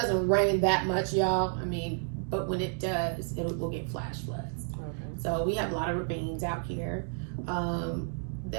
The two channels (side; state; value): left; silent; 57 dB below the other